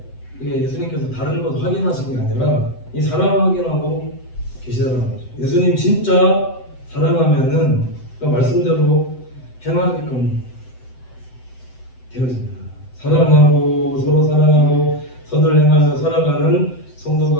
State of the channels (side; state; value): right; late; 7.9 ms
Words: 이게 예수님께서 다른 것 확인하신 게 아니라 이 사랑 확인하고 계시더라는 거죠. 예수님 진짜 사랑하면은 그 말씀대로 행하게끔 되어집니다. 사랑하고 서로 사랑하고 선을 행하며 살아가는